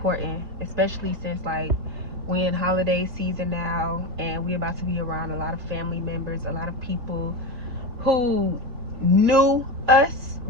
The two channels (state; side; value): late; left; 3.2 ms